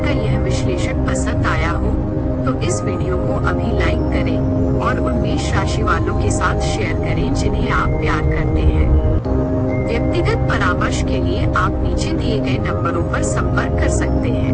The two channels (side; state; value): both; identical; correlation 1.00